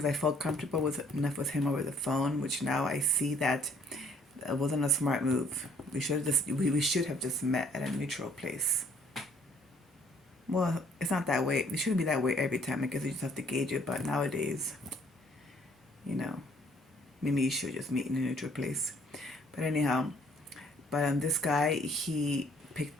I felt comfortable with enough with him over the phone, which now I see that it wasn't a smart move. We should have just met at a neutral place. Well, it's not that way. It shouldn't be that way every time. I guess you just have to gauge it. But nowadays, you know, maybe you should just meet in a neutral place. But anyhow, this guy, he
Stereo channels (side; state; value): both; normal; correlation 0.61